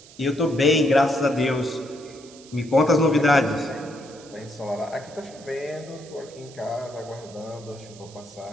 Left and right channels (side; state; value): right; noise; hiss, 21 dB below the sound